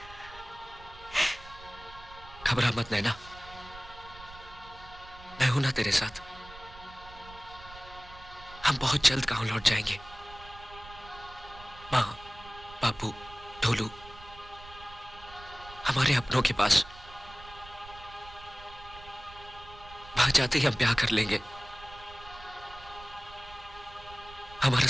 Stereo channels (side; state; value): right; noise; rumble, 18 dB below the sound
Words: घबरा मत नैना, मैं हूं ना तेरे साथ। हम बहुत जल्द गांव लौट जाएंगे। माँ, बापू, ढोलू, हमारे अपनों के पास। वहां जाते ही हम ब्याह कर लेंगे। हमारा